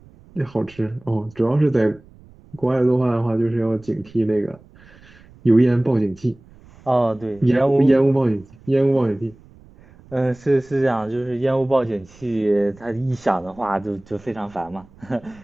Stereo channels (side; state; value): right; noise; rumble, 25 dB below the sound